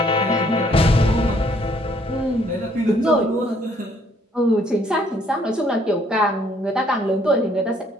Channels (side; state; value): both; normal; correlation 0.65